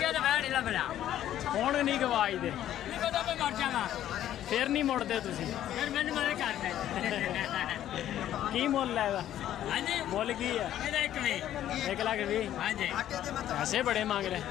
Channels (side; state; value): right; quieter; 11.9 dB